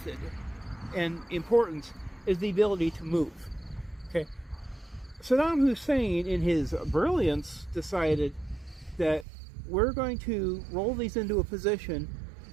and importance is the ability to move. Okay, Saddam Hussein, in his brilliance, decided that we're going to roll these into a position,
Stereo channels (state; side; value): drops out; left; at 9.2 s